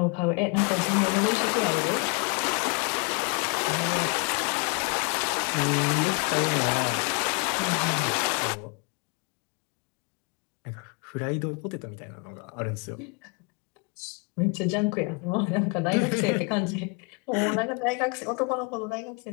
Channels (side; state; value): right; quieter; 35.1 dB